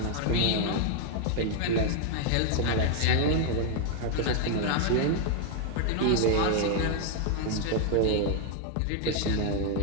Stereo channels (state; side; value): different; both; correlation 0.00